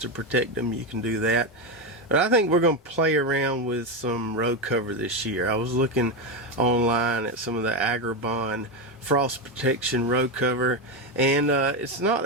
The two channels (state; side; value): normal; both; correlation 0.11